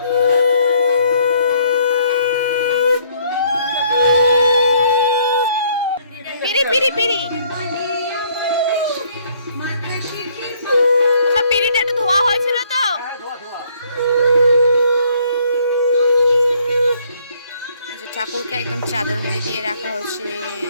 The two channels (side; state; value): both; inverted; correlation -0.64